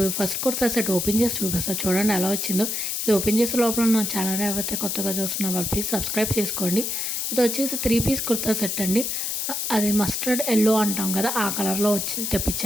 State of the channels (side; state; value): left; noise; hiss, 1 dB below the sound